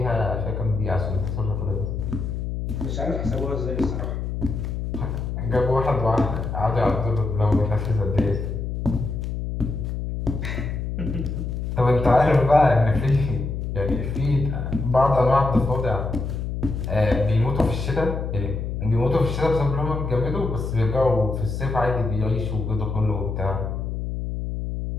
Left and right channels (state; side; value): noise; left; hum, 4 dB below the sound